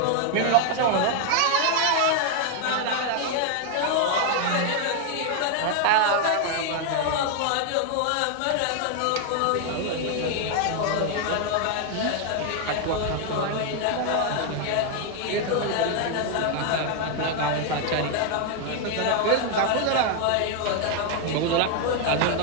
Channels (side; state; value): both; different; correlation 0.00